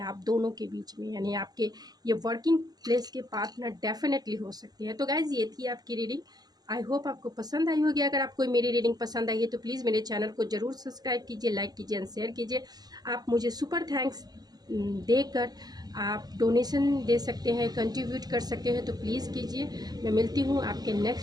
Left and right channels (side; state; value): left; late; 0.19 ms